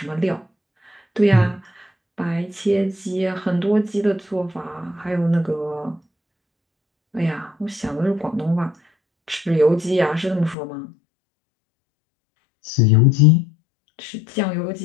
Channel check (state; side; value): drops out; right; at 10.6 s